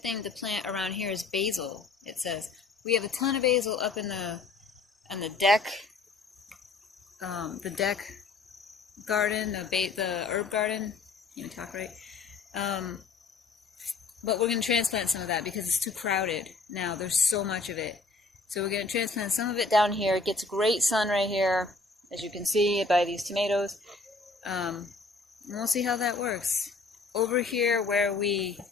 to plant around here is basil, it says. We have a ton of basil up on the deck garden, the herb garden. Can't even talk right. But we're going to transplant some of that because it's too crowded now. There's so much of it. So we're going to transplant some of it down here. It gets great sun right here, as you can see by these tomatoes. And we'll see how that works. Over here where we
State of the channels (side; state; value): right; quieter; 3.9 dB